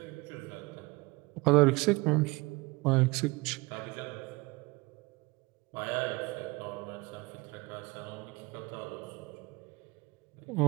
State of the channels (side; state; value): left; quieter; 24.4 dB